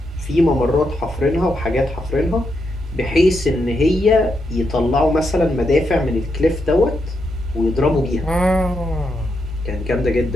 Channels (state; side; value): normal; both; correlation 0.82